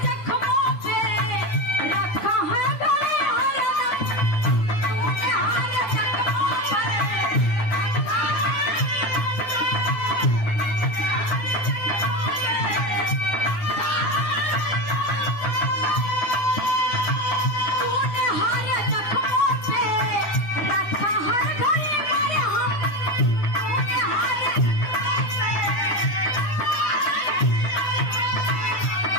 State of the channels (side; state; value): right; late; 10 ms